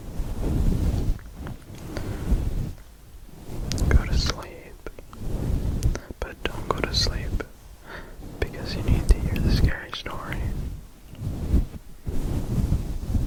Go to sleep, but don't go to sleep because you need to hear the scary story.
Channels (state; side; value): identical; both; correlation 1.00